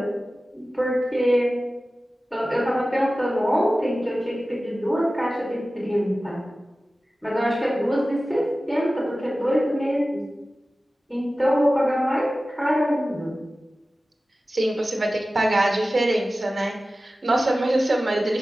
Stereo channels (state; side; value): normal; both; correlation 0.96